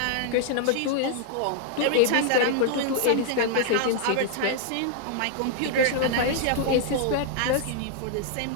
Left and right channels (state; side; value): different; both; correlation -0.01